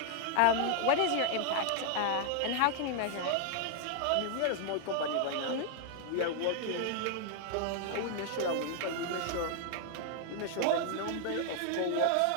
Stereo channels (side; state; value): both; different; correlation 0.00